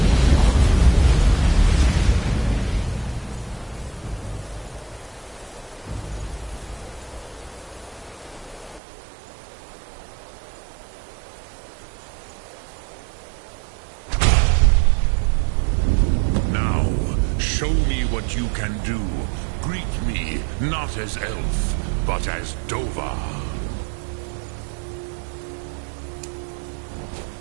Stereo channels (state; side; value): drops out; left; at 8.8 s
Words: Show me what you can do. Greet me not as elf, but as Dova.